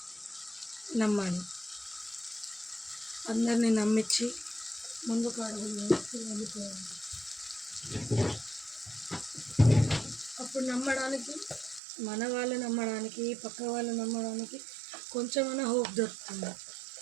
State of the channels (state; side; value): drops out; left; at 11.8 s